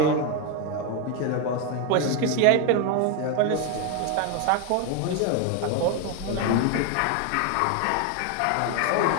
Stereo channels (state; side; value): different; both; correlation 0.01